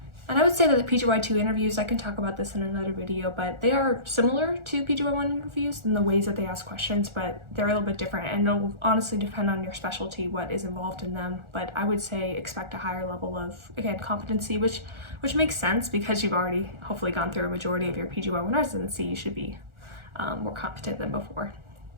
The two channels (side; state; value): left; late; 1.4 ms